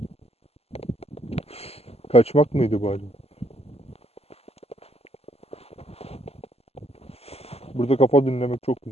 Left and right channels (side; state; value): right; late; 0.29 ms